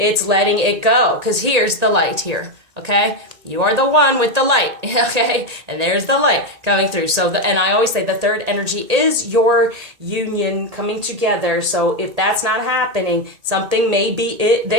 letting it go because here's the light here. Okay, you are the one with the light, okay, and there's the light coming through. So, and I always say the third energy is your union coming together. So if that's not happening, something may be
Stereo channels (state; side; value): late; left; 1.8 ms